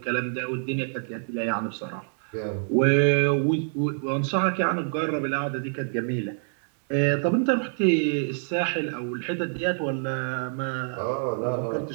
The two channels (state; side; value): silent; left; digital silence